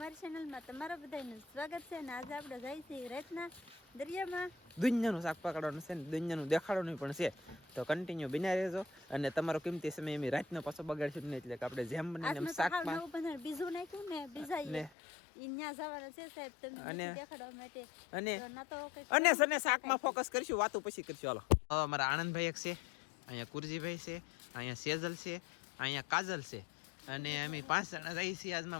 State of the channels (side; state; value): right; drops out; at 14.9 s